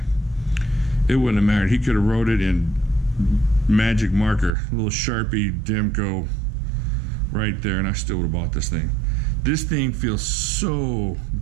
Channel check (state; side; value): drops out; left; at 4.5 s